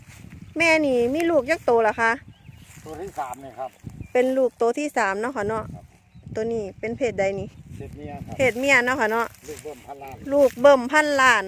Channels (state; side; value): identical; both; correlation 1.00